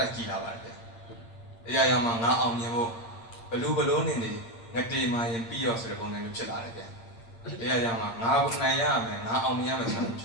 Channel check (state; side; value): late; right; 8.8 ms